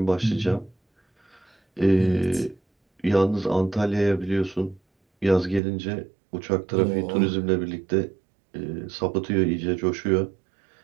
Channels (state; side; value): drops out; left; at 5.6 s